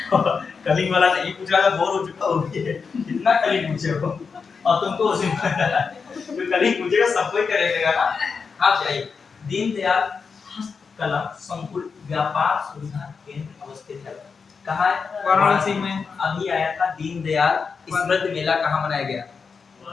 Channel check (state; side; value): quieter; right; 5.4 dB